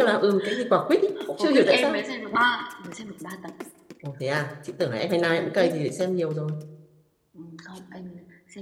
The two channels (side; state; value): both; identical; correlation 1.00